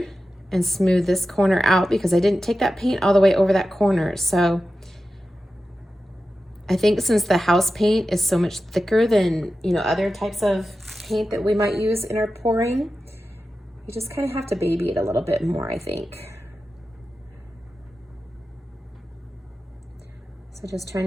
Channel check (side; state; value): both; normal; correlation 0.93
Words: and smooth this corner out, because I didn't take that paint all the way over that corner. So I think since the house paint is so much thicker than, you know, other types of paint that we might use in our pouring, you just kind of have to baby it a little bit more, I think. So just trying